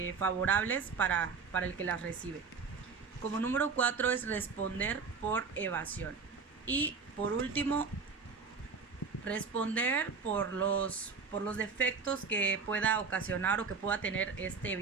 favorables para el que las recibe. Como número 4 es responder por evasión. Y por último, responder por los defectos que pueda ocasionar o que pueda tener este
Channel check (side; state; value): left; quieter; 5.2 dB